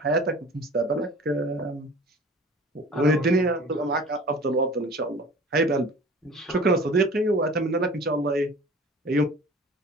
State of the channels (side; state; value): both; normal; correlation 0.43